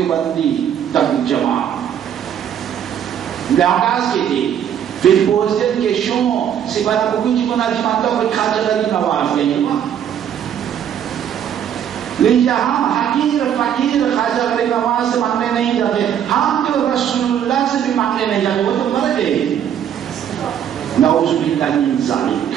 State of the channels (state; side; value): quieter; left; 9.3 dB